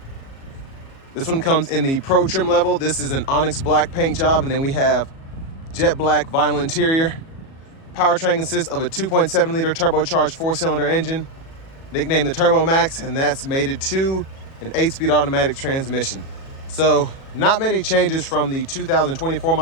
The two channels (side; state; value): right; late; 37 ms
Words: This one comes in the Pro trim level. This is an onyx black paint job, and then we have jet black vinyl interior. Powertrain consists of a 2.7 liter turbocharged 4-cylinder engine, nicknamed the Turbo Max, and that's mated to an 8-speed automatic transmission. So not many changes from the 2024